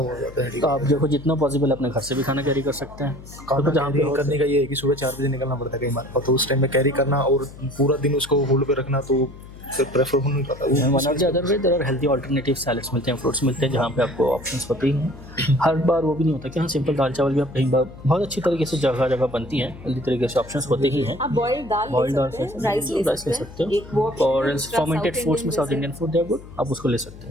जाता है हेडेक। तो आप देखो, जितना पॉसिबल अपने घर से भी खाना कैरी कर सकते हैं। खाना कैरी करने का ये है कि सुबह 4 बजे निकलना पड़ता है कई बार, तो उस टाइम में कैरी करना और पूरा दिन उसको होल्ड पे रखना, तो फिर प्रेफर हो नहीं पाता। One of the other way there are healthy alternative salads मिलते हैं, फ्रूट्स मिलते हैं, जहाँ पे आपको ऑप्शंस होती हैं। हर बार वो भी नहीं होता कि हाँ सिंपल दाल चावल भी आप कहीं बार बहुत अच्छी तरीके से जगह जगह बनती हैं, हेल्दी तरीके से ऑप्शंस होते ही हैं। आप बॉइल्ड दाल बॉइल्ड ले सकते हैं, राइस ले सकते हैं, एक वो और फर्मेंटेड फूड्स में south Indian food they are good, आप उसको ले सकते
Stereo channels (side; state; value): left; noise; hum, 17 dB below the sound